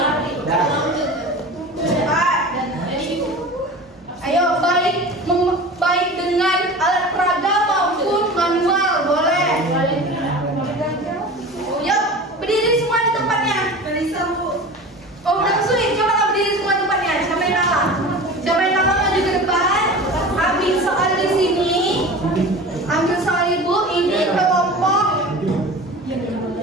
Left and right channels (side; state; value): both; normal; correlation 0.35